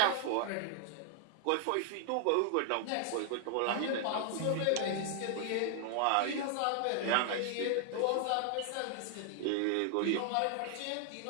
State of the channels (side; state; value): both; different; correlation 0.00